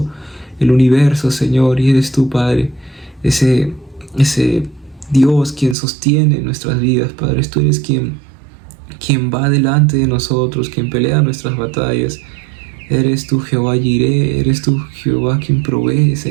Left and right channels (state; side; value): drops out; left; at 5.8 s